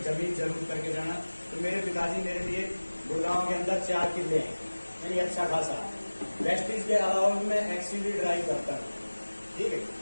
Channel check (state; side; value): inverted; both; correlation -1.00